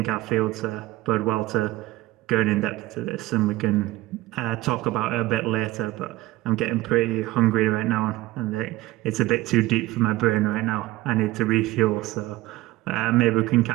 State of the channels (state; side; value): quieter; left; 17.8 dB